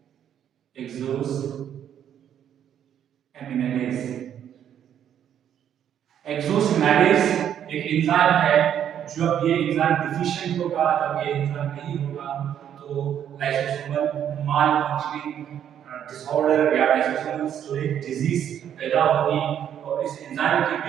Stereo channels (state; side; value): quieter; left; 9.6 dB